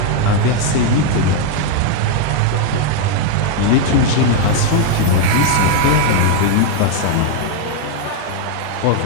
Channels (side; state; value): both; different; correlation 0.01